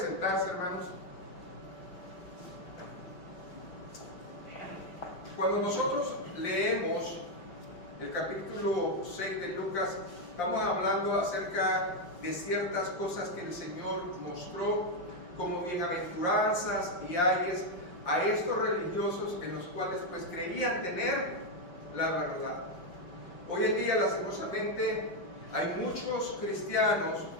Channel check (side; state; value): right; late; 5.7 ms